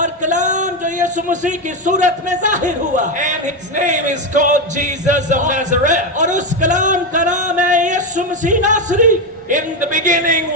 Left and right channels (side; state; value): both; normal; correlation 0.10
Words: कलाम जो यीशु मसीह की सूरत में जाहिर हुआ, And his name is called Jesus of Nazareth. और उस कलाम का नाम है यीशु मसीह नासरी। In the beginning